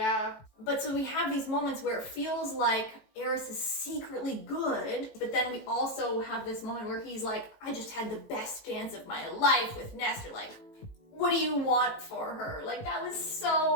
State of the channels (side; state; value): right; late; 18 ms